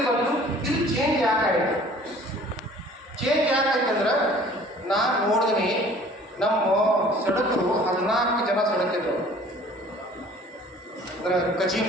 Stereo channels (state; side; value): normal; both; correlation 0.51